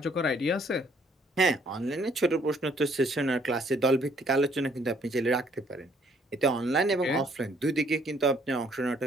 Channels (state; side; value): normal; both; correlation 0.64